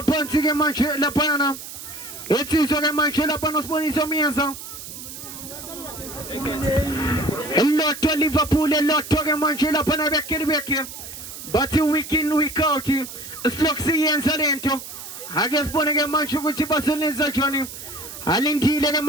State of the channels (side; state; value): right; noise; hiss, 12 dB below the sound